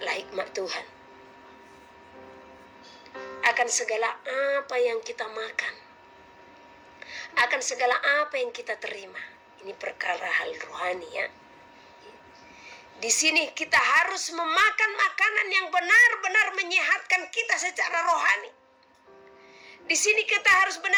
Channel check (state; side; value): identical; both; correlation 1.00